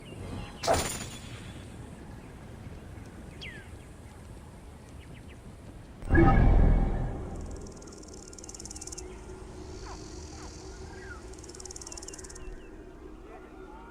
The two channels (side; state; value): both; identical; correlation 1.00